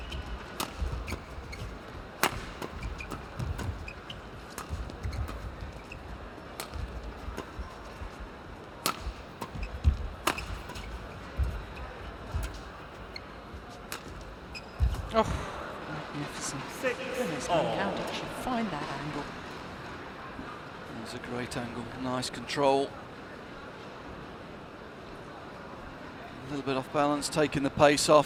Oh, magnificent. 6 Goodness me, all. how did she find that angle? That's a great angle, nice control. A little bit off balance, taking the pace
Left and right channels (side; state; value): both; identical; correlation 1.00